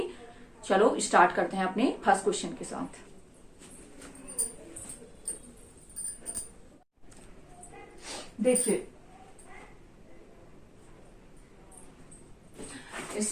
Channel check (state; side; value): identical; both; correlation 1.00